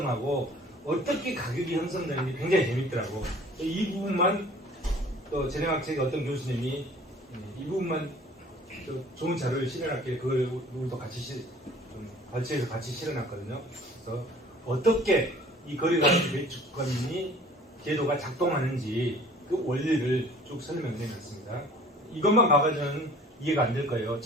어떻게 가격이 형성되는지 굉장히 재밌더라고. 이 부분만 또 재능학책의 어떤 교수님이 이 부분만 좋은 자료를 실현할게 그걸 우리도 같이 발주에서 같이 실어놨거든요. 그래서 어떻게 이 거래가치 배출권이 제도가 작동하는지 그 원리를 쭉 설명해 놨습니다. 이것만 봐가지고는 이해가 안 될 거예요.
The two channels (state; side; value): normal; both; correlation 0.50